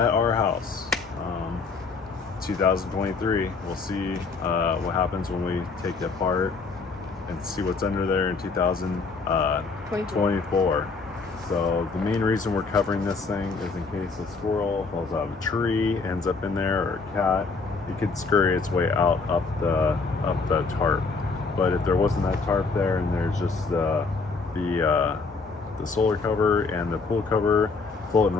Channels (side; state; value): right; quieter; 4.4 dB